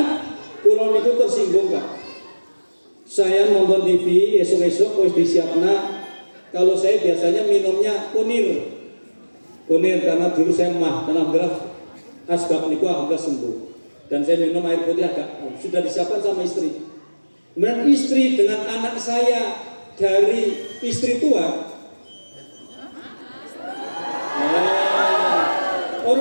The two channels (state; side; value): inverted; both; correlation -1.00